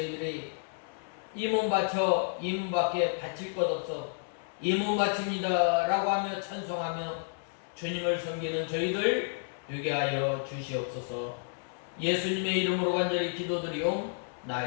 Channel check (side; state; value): right; silent; 57 dB below the other